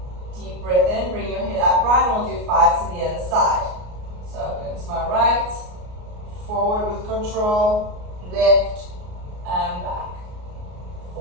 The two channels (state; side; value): late; left; 33 ms